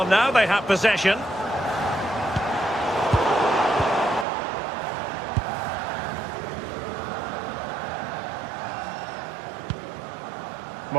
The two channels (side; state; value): left; drops out; at 4.2 s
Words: now they have possession.